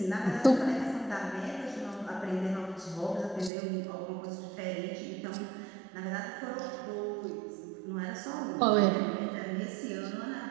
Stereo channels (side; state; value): left; drops out; at 3.5 s